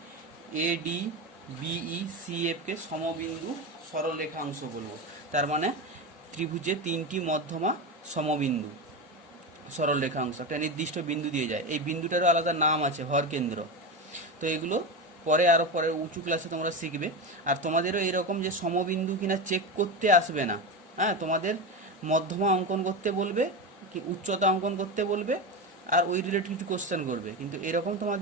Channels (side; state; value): both; normal; correlation 0.19